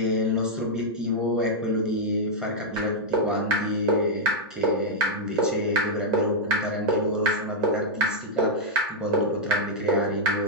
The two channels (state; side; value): normal; both; correlation -0.04